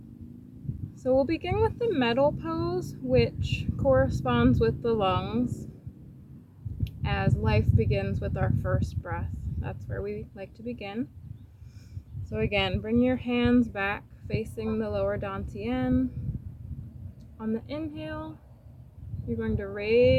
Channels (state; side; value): identical; both; correlation 1.00